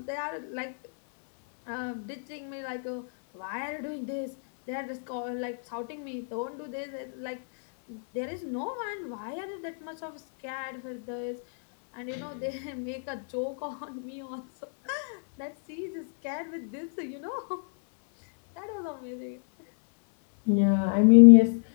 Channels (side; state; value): right; silent; 59 dB below the other